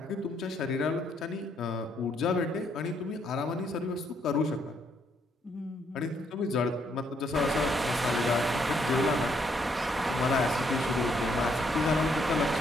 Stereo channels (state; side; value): normal; both; correlation 0.72